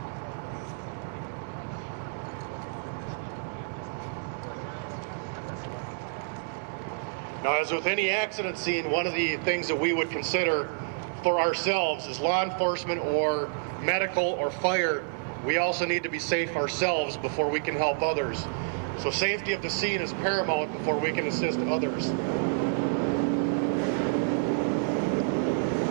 Now, as with any accident scene, one of the things that we would consider for ourselves as law enforcement or medical or fire, we also need to be safe ourselves before we can help others. So safety of the scene is paramount before we can assist others.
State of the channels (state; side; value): silent; left; digital silence